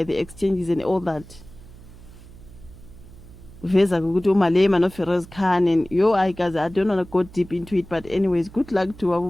the exchanges and all that. Veza ukuthi uMalema no Feroz Khan and I guys, I don't want to go deep into it, but anyways, good luck to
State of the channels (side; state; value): right; noise; hum, 19 dB below the sound